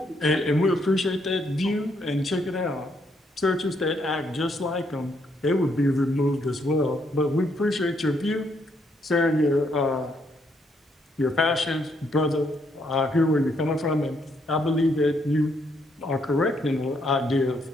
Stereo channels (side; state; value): both; normal; correlation 0.74